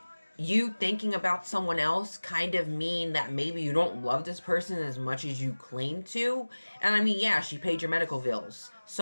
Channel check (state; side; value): inverted; both; correlation -1.00